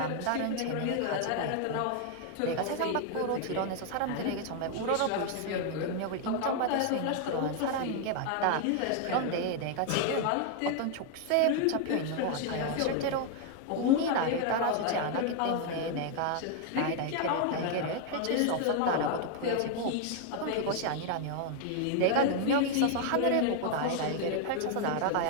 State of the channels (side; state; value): both; different; correlation 0.00